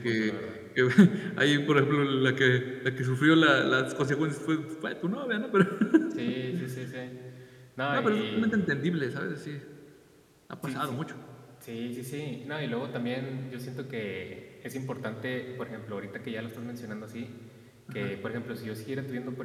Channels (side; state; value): both; identical; correlation 1.00